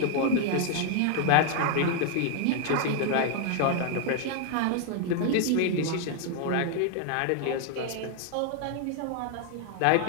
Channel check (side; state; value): both; different; correlation 0.00